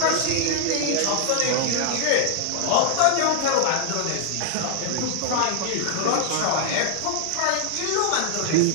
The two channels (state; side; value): different; both; correlation -0.01